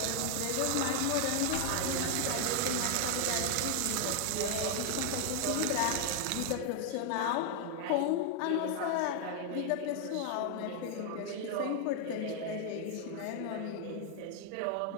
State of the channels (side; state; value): both; different; correlation 0.00